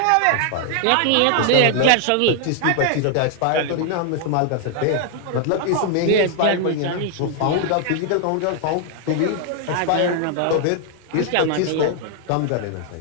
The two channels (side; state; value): both; different; correlation 0.00